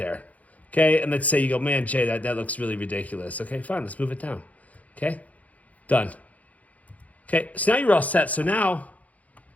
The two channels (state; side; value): late; right; 0.071 ms